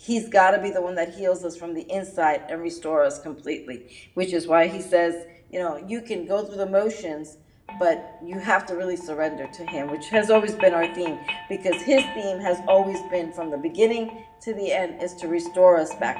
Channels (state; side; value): identical; both; correlation 1.00